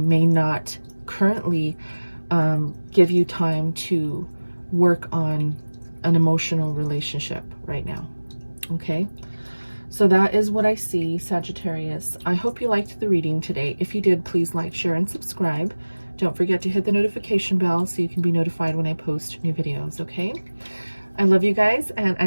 not currently give you time to work on an emotional relationship right now. Okay, so that is what I see, Sagittarius. I hope you liked the reading today. If you did, please like, share, and subscribe. Don't forget to hit the notification bell so you can be notified when I post new videos. Okay, I love you guys, and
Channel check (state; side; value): inverted; both; correlation -1.00